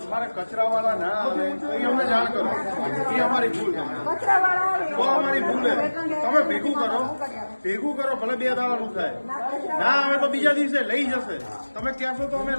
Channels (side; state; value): both; inverted; correlation -1.00